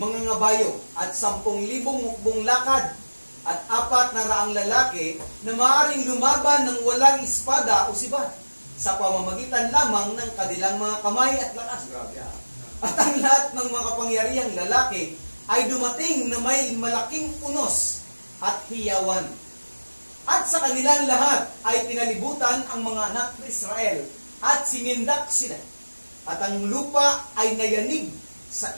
ngabayo at 10,000 mukbong lakad at 400 lalaki na maaaring lumaban ng walang espada o sibat sa pamamagitan lamang ng kanilang mga kamay at lakas. At ang lahat ng mga kapangyarihang lalaki ay dumating na may malaking unos at hiyawan. At sa kanilang lahat ay pinalibutan ang mga anak ng Israel at sinindak sila. At ang lupa ay nayanig sa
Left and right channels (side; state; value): both; inverted; correlation -1.00